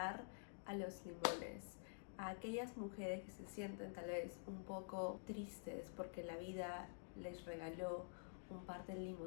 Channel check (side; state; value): right; silent; digital silence